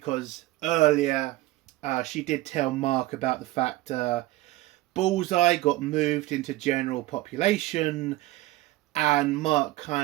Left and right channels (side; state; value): left; quieter; 18.0 dB